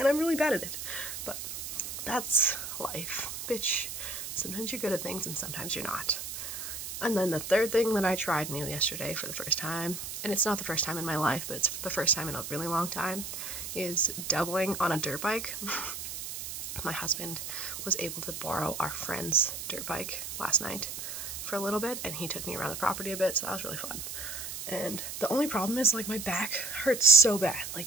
I'm really bad at it, but that's life, bitch. Sometimes you're good at things and sometimes you're not. And then the third thing that I tried new yesterday for the first time, and it's not the first time in my life, but it's the first time in a really long time, is doubling on a dirt bike. My husband was able to borrow our friend's dirt bike last night for a little bit, and he took me around the property a bit, so that was really fun. And the only problem is, like, my back hurts so bad.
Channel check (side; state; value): right; noise; hiss, 7 dB below the sound